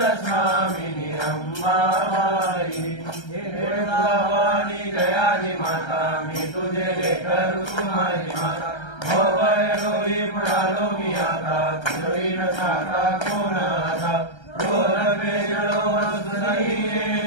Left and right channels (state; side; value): late; right; 1.3 ms